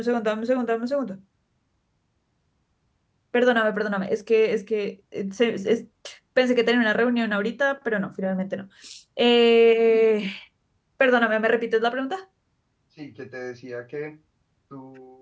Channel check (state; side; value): identical; both; correlation 1.00